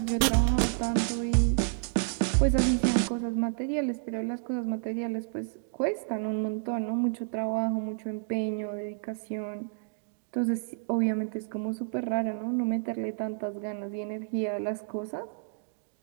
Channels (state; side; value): silent; left; digital silence